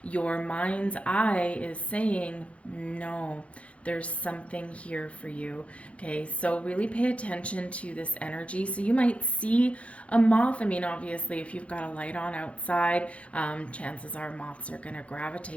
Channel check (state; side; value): late; right; 0.063 ms